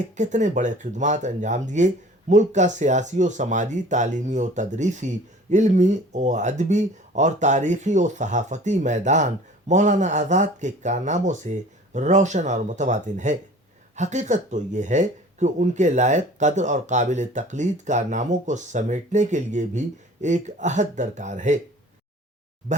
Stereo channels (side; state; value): both; normal; correlation 0.46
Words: کتنے بڑے خدمات انجام دیے۔ ملک کا سیاسی و سماجی، تعلیمی و تدریسی، علمی و ادبی اور تاریخی و صحافتی میدان مولانا آزاد کے کارناموں سے روشن اور متواتر ہے۔ حقیقت تو یہ ہے کہ ان کے لائق قدر اور قابل تقلید کارناموں کو سمیٹنے کے لیے بھی ایک عہد درکار ہے۔